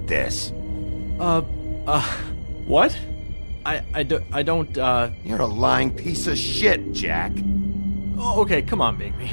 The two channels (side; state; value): both; inverted; correlation -1.00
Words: this. What? I don't, You're a lying piece of shit, Jack. Oh, okay, come on, Bigby.